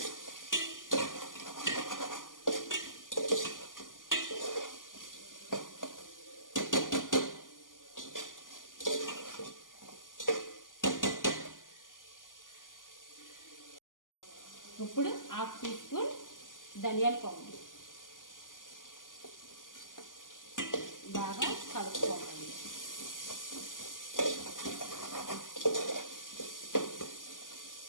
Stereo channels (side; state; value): right; late; 0.88 ms